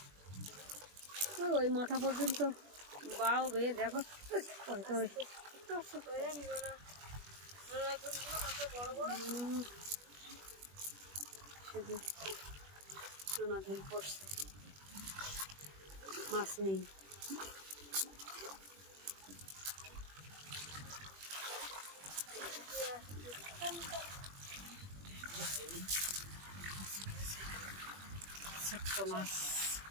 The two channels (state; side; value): late; left; 21 ms